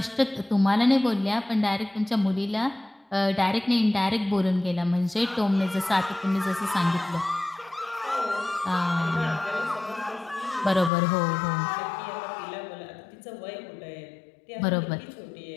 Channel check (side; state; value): right; drops out; at 10.9 s